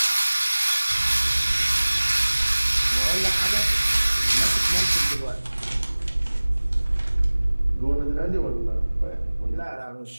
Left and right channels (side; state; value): both; inverted; correlation -1.00